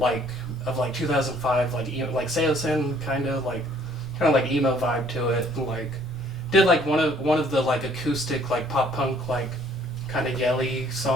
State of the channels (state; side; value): normal; both; correlation 0.60